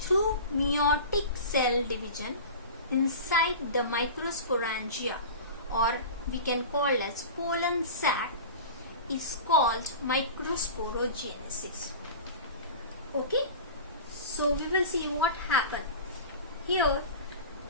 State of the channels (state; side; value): inverted; both; correlation -0.34